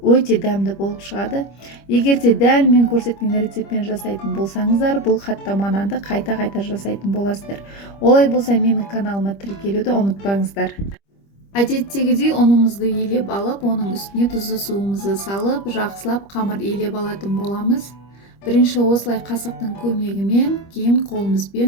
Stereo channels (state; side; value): late; right; 25 ms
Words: дәмді болып шығады. Егер де дәл мен көрсеткен рецептпен жасайтын болсаңыздар, бұл қаттама нанды қайта-қайта жасайтын боласыздар. Олай болса, менің каналыма тіркелуді ұмытпаңыздар. Әдеттегідей ұнымызды елеп алып, оның үстіне тұзды суымызды салып, жақсылап қамыр елеп алатын боламыз. Бірінші осылай қасықтың көмегімен, кейін